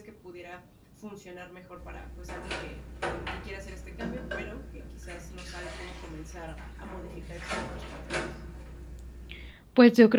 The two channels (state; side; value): identical; both; correlation 1.00